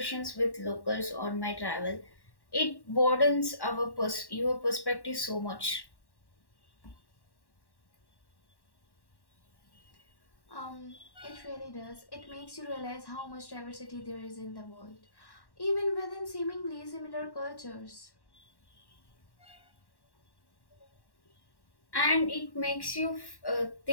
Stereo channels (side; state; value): right; late; 1.1 ms